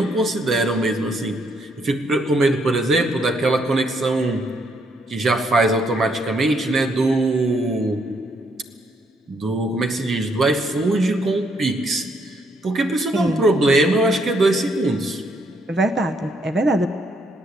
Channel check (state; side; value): normal; both; correlation 0.72